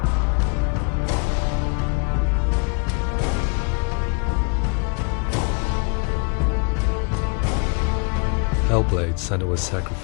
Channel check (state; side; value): quieter; right; 36.6 dB